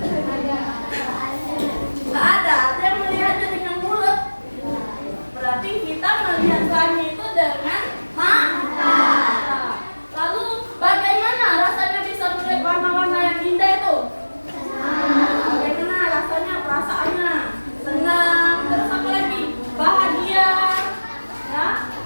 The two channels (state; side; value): inverted; both; correlation -1.00